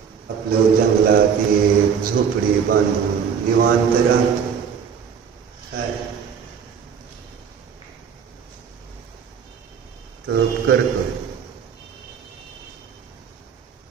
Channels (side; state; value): left; quieter; 7.1 dB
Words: आपलं जंगलात एक झोपडी बांधून निवांत राहतो. काय तप करतोय.